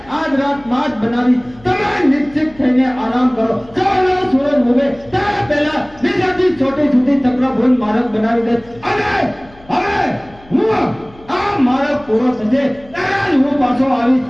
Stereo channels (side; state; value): left; noise; hum, 25 dB below the sound